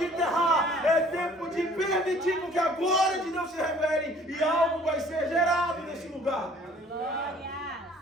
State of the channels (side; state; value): both; normal; correlation 0.54